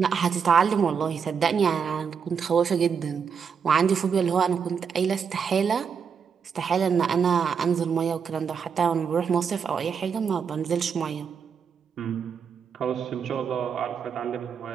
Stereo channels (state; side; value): quieter; left; 6.6 dB